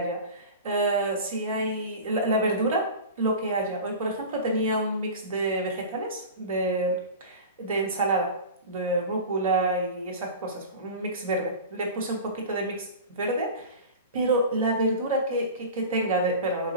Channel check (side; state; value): both; inverted; correlation -0.33